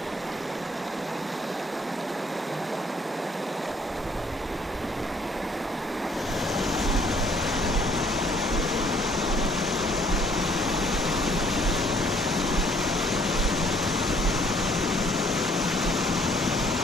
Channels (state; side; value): normal; both; correlation 0.62